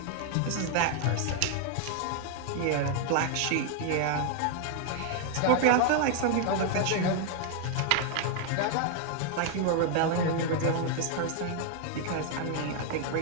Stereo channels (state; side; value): different; both; correlation 0.00